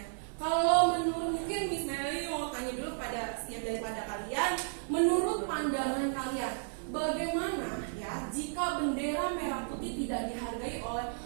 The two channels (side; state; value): left; silent; 56 dB below the other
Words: Kalau menurut, mungkin Miss Meli mau tanya dulu pada setiap daripada kalian, menurut pandangan kalian, bagaimana ya jika bendera merah putih tidak dihargai oleh